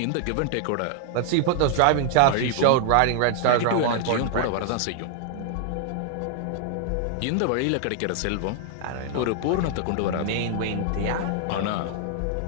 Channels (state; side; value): different; both; correlation 0.00